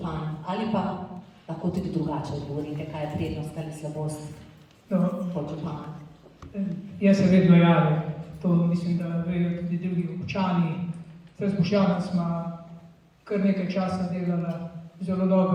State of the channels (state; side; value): identical; both; correlation 1.00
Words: ali pa lahko tudi drugače odgovorite, kaj je prednost ali slabost podžupana. Jaz se vedno javim. To mislim, da vejo tudi drugi občani. Zdaj s Boštjanom smo kar nekaj časa delala zelo